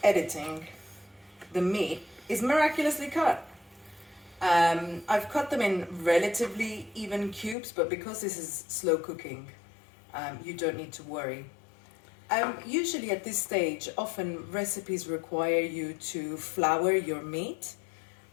editing, the meat is miraculously cut. I've cut them in relatively even cubes, but because this is slow cooking, you don't need to worry. Usually at this stage, often recipes require you to flour your meat,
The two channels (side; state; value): right; drops out; at 7.6 s